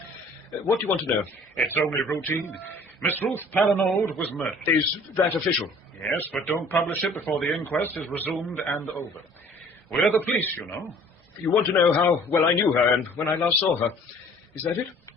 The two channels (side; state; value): both; normal; correlation 0.52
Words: What do you want to know? It's only routine. Miss Ruth Palinode was murdered. Is that official? Yes, but don't publish it before the inquest is resumed and over. We're the police, you know. You want to know how well I knew her and when I last saw her. Is that it?